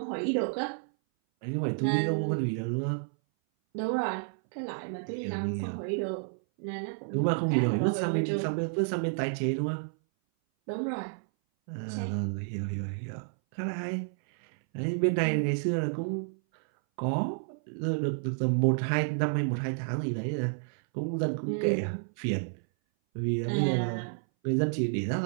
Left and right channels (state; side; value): silent; left; 58 dB below the other